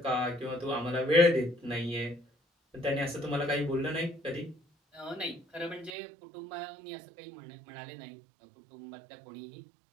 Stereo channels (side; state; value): left; drops out; at 6.0 s